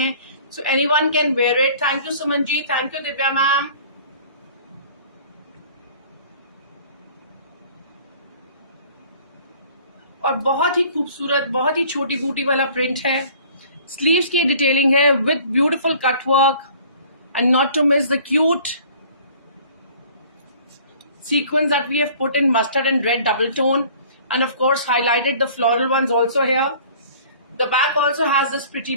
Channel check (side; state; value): both; inverted; correlation -0.50